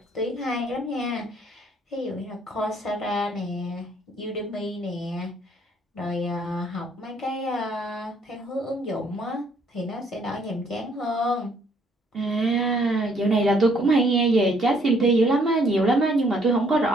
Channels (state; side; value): normal; both; correlation 0.65